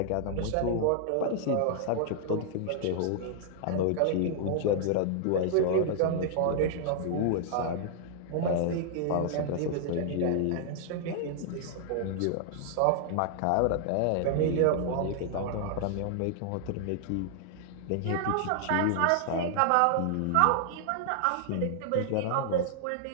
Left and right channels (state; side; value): different; both; correlation -0.01